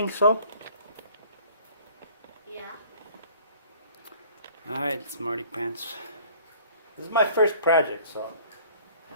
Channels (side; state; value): both; inverted; correlation -0.52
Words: so? Yeah. Alright, Smarty Pants. This is my first project, so.